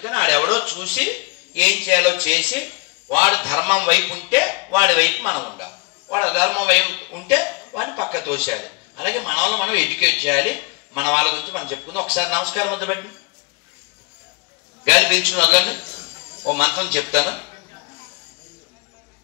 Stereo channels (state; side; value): quieter; right; 28.5 dB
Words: ఆడెవడో చూసి ఏం చేయాలో చేసి, వాడు ధర్మం వైపు ఉంటే వాడి వైపు మనం ఉండాలి, వాడు అధర్మం వైపు ఉంటే వాడిని పక్క తోసేయాలి. అలాగే మన వాళ్ళని మనం ఎడ్యుకేట్ చేయాలి. మన వాళ్ళ గురించి మనం చెప్పుకుందాం. ఒకసారి నమస్కారం ముద్ర పెట్టండి, గాలి పీల్చుకుని వదలండి. ఓ మంత్రం చెప్తాను.